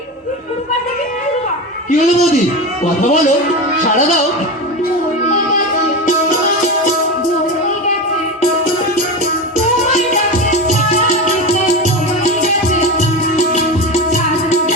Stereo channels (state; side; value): normal; both; correlation 0.22